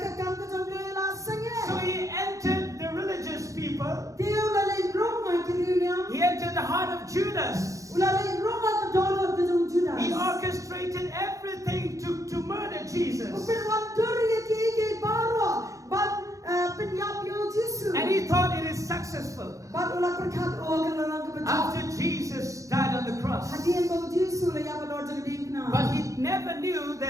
So he entered the religious people. He entered the heart of Judas. He orchestrated everything never knew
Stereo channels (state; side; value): late; left; 0.16 ms